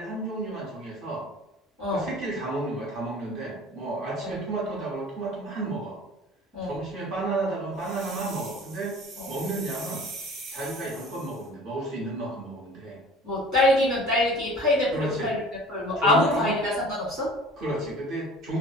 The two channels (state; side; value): normal; both; correlation 0.45